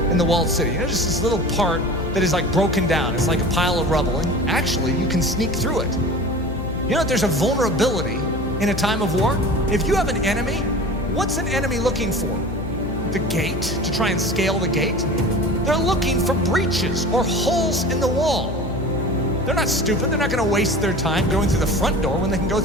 in the walled city, just this little part that is like broken down, it's like a pile of rubble, and actually you can sneak through it. You know that there's a vulnerability in a time of war? If you have an enemy, what's an enemy looking for? The gate, to try and scale the gate? They're looking for breaches or holes in the wall. They're not stupid. They're not going to waste their time going through the front door when they can go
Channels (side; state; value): left; noise; hum, 7 dB below the sound